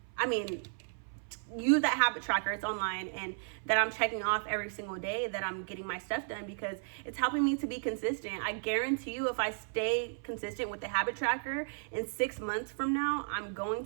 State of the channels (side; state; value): left; silent; 55 dB below the other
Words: use that habit tracker, it's online, and that I'm checking off every single day that I'm getting my stuff done, because it's helping me to be consistent. I guarantee you, if I stay consistent with the habit tracker, in 6 months from now, I'm going